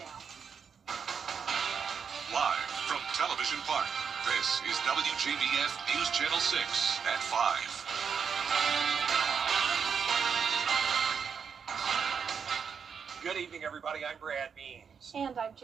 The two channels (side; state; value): left; quieter; 6.6 dB